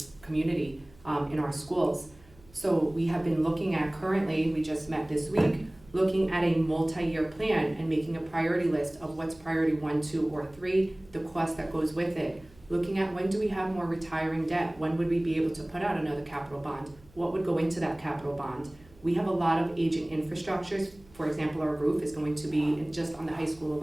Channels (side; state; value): right; noise; hum, 26 dB below the sound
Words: community, in our schools. So we have been looking at currently, we just met this week, looking at a multi-year plan and making a priority list of what's priority 1, 2, or 3, the cost that goes with it. Looking at when do we have more retiring debt? When would we be able to put out another capital bond? What would go into that capital bond? We have a lot of aging infrastructures. For example, our roof is going to be, just on the high school